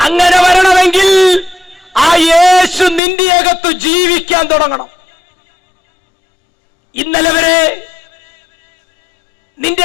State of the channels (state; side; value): drops out; right; at 3.0 s